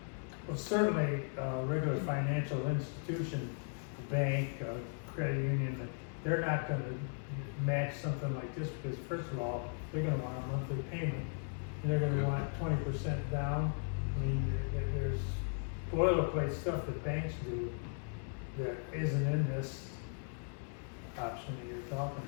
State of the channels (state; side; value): silent; right; 53 dB below the other